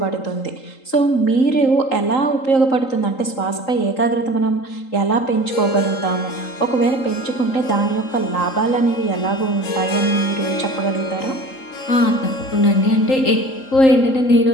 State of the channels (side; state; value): right; late; 3.8 ms